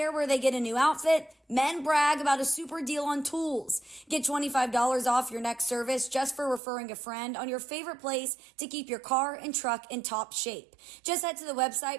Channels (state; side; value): drops out; left; at 6.6 s